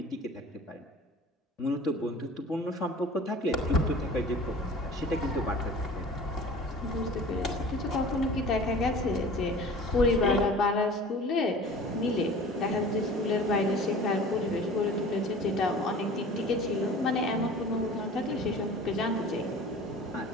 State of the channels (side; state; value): both; normal; correlation 0.42